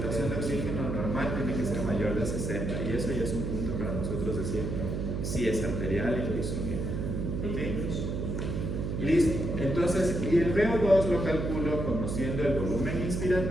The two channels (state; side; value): noise; right; hum, 2 dB below the sound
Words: de oxígeno normal tiene que ser mayor de 60, y eso ya es un punto para nosotros decir si es arterial y lo hizo bien. ¿Sí? Listo. Entonces, y el VO2 lo calculo conociendo el volumen